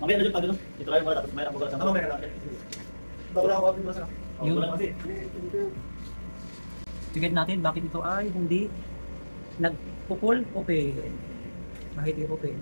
Mamaya na dyan pag ano. Dito kayo mga tapos mayroon ako sa mamaya na. Bago lang ako kapit masarap. Yun. Tignan natin bakit ito ay hindi nagpupul open. Bakit hindi open,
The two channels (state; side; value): inverted; both; correlation -1.00